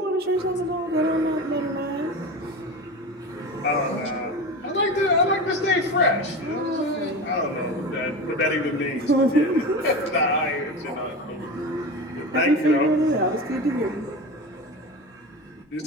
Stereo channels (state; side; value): normal; both; correlation 0.27